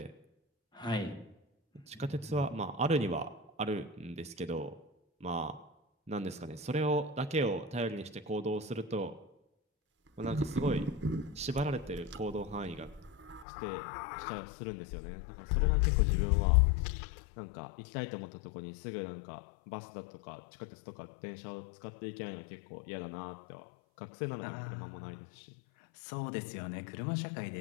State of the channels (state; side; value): drops out; right; at 13.5 s